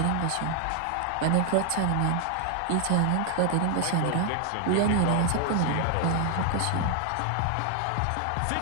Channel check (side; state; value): both; different; correlation 0.00